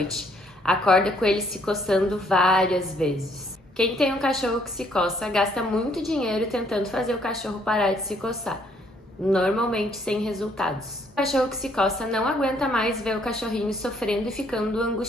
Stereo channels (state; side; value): normal; both; correlation 0.66